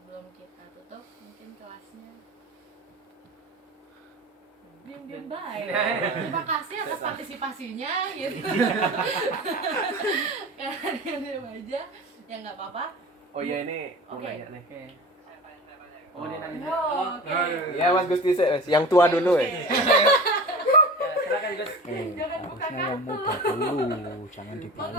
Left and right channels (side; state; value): both; normal; correlation 0.35